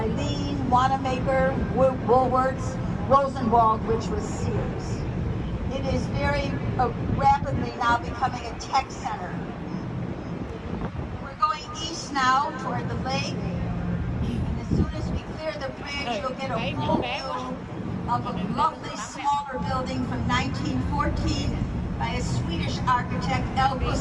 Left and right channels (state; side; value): identical; both; correlation 1.00